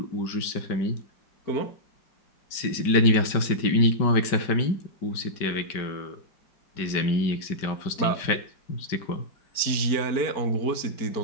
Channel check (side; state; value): right; late; 5.2 ms